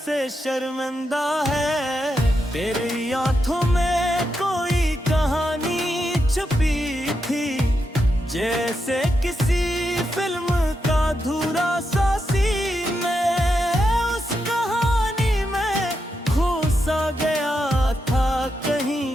से शर्मिंदा है। तेरी आंखों में कोई कहानी छुपी थी, जैसे किसी फिल्म का अधूरा सा सीन में। उस कहानी में खो सा गया था कहीं,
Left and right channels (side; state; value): both; normal; correlation 0.85